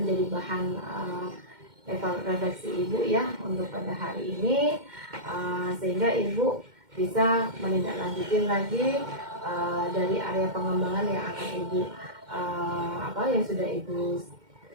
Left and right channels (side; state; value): left; late; 2.1 ms